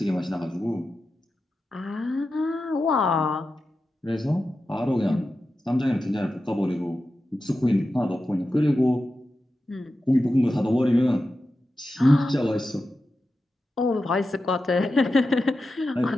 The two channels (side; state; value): both; normal; correlation 0.91